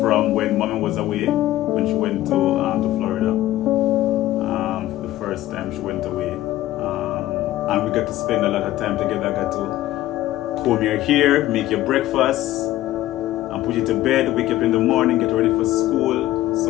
when mommy was away, when she went to Florida. The first time she went away, and we got to spend a lot of time together. Got to comb your hair, make your breakfast, and put you to bed, wake up in the morning, get ready for school.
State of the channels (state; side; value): quieter; right; 15.1 dB